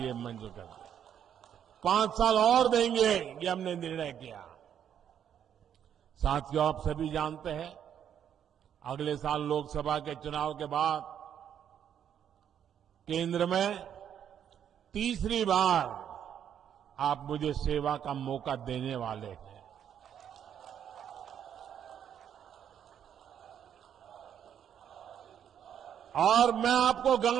मंजूर कर दिया। 5 साल और देंगे, ये हमने निर्णय किया। साथियों, आप सभी जानते हैं, अगले साल लोकसभा के चुनाव के बाद केंद्र में तीसरी बार आप मुझे सेवा का मौका देने वाले हैं। और मैं आपको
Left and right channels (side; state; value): left; quieter; 9.2 dB